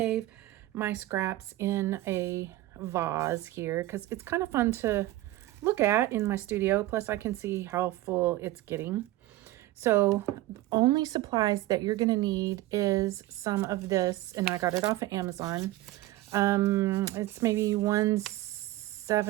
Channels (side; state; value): left; quieter; 16.6 dB